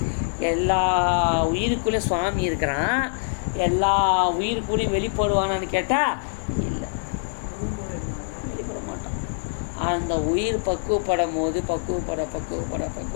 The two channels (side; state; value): right; silent; digital silence